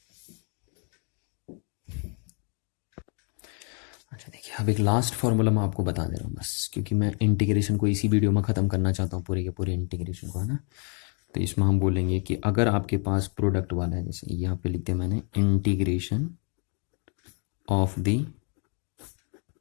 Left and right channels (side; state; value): right; quieter; 39.3 dB